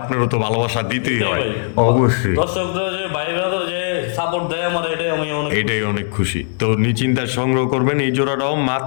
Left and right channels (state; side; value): silent; right; 67 dB below the other